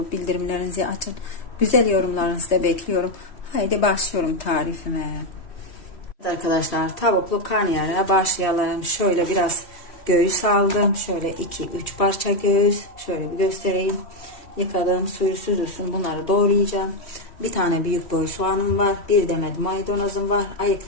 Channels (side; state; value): right; late; 3.1 ms